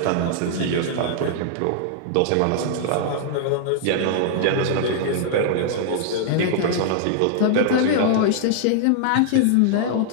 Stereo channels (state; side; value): different; both; correlation -0.01